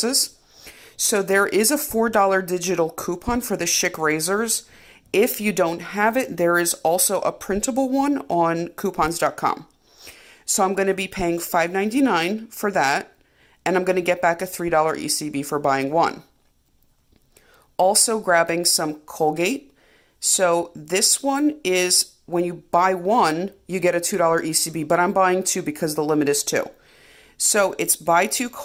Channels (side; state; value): both; identical; correlation 1.00